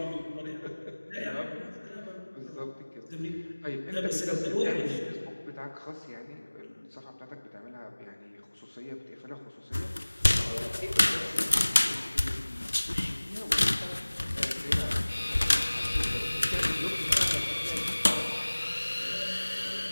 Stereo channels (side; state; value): both; inverted; correlation -1.00